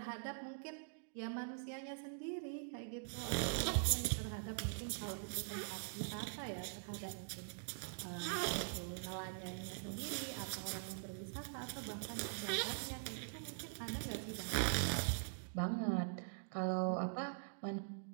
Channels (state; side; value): silent; left; digital silence